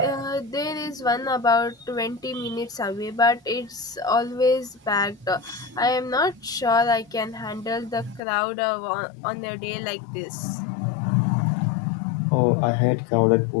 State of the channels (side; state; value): right; drops out; at 8.2 s